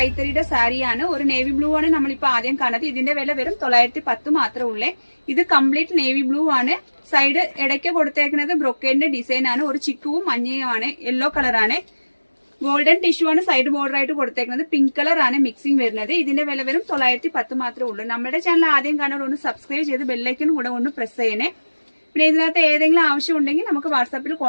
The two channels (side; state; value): both; inverted; correlation -1.00